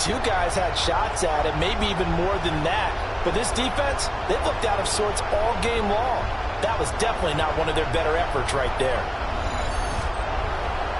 guys had shots at it, maybe even more than that. But this defense, they've looked out of sorts all game long. That was definitely not one of their better efforts right there.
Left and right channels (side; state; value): both; identical; correlation 1.00